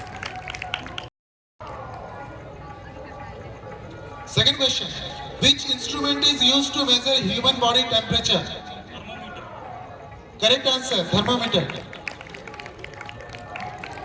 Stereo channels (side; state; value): both; identical; correlation 1.00